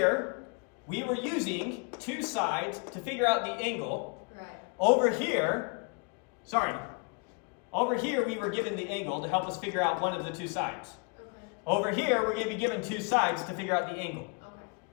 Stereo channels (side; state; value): right; quieter; 34.3 dB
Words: we were using two sides to figure out the angle. Right. Over here, we were given the angle to help us figure out one of the two sides. Okay. Over here, we're going to be given two sides to figure out the angle. Okay.